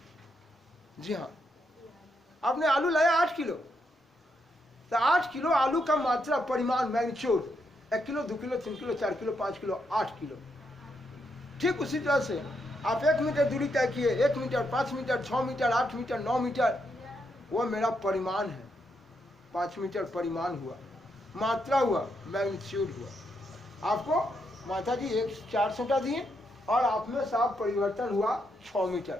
जी हाँ आपने आलू लाया 8 किलो, तो 8 किलो आलू का मात्रा, परिमाण, magnitude 1 kilo 2 kilo 3 kilo 4 kilo 5 kilo 8 kilo. ठीक उसी तरह से आप 1 मीटर दूरी तय किए, 1 metre 5 metre 6 metre 8 metre 9 metre, वो मेरा परिमाण है। 5 मीटर परिमाण हुआ, मात्रा हुआ, मैग्नीट्यूड हुआ। आपको माता जी 4 सोटा दिए और आप में साफ परिवर्तन हुआ 6 मीटर।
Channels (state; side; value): normal; both; correlation 0.80